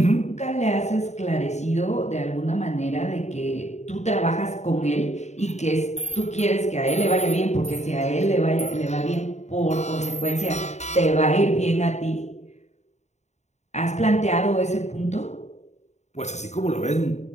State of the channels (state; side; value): late; right; 0.33 ms